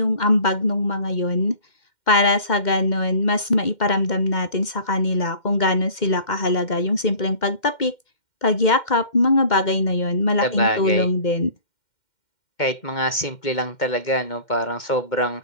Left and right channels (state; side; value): late; right; 2.1 ms